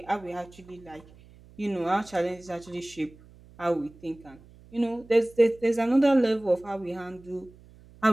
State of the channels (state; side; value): noise; right; hum, 24 dB below the sound